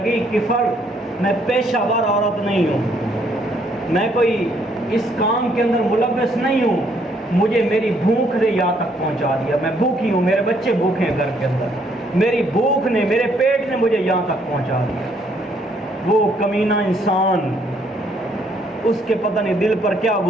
کفل میں پیشہ ور عورت نہیں ہوں، میں کوئی اس کام کے اندر ملوث نہیں ہوں، مجھے میری بھوک نے یہاں تک پہنچا دیا، میں بھوکی ہوں، میرے بچے بھوکے ہیں گھر کے اندر، میری بھوک نے، میرے پیٹ نے مجھے یہاں تک پہنچا دیا۔ وہ کمینہ انسان، اس کے پتہ نہیں دل پر کیا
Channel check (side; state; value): both; normal; correlation 0.68